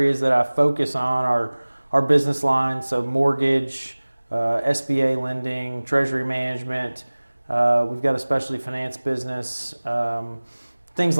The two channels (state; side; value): inverted; both; correlation -1.00